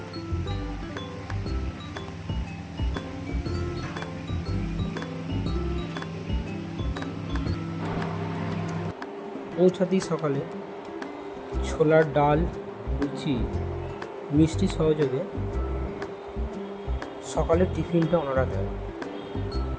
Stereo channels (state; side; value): identical; both; correlation 1.00